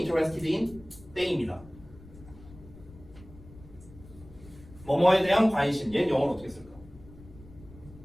in 땡입니다. 뭐뭐에 대한 관심. 얘는 영어로 어떻게 쓸까?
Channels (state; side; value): noise; left; rumble, 20 dB below the sound